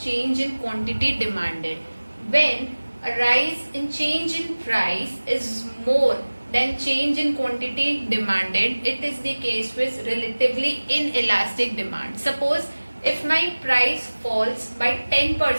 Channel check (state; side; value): inverted; both; correlation -1.00